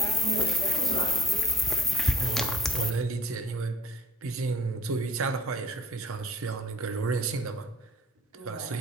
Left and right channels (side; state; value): both; normal; correlation 0.48